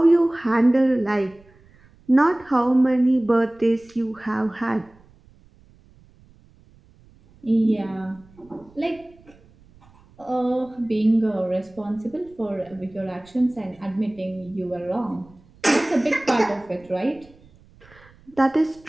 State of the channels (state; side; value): noise; right; rumble, 28 dB below the sound